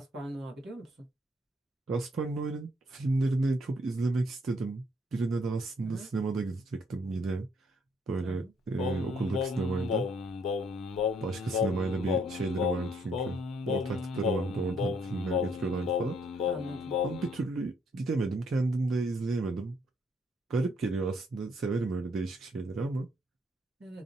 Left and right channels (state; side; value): normal; both; correlation 0.68